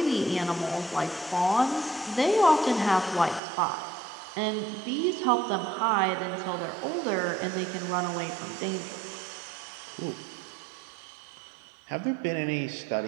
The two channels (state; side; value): drops out; left; at 3.4 s